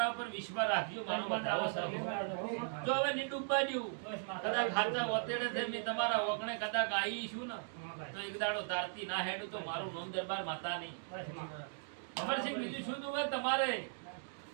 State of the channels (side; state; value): left; silent; digital silence